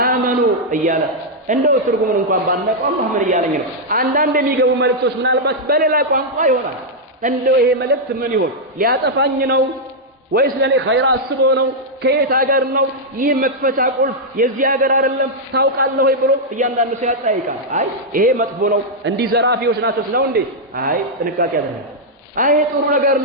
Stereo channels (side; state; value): both; normal; correlation -0.04